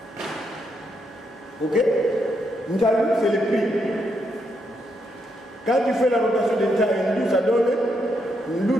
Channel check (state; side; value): normal; both; correlation 0.79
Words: Ok? Ntalu, c'est le prix. Quand tu fais la rotation de Ntalu, ça donne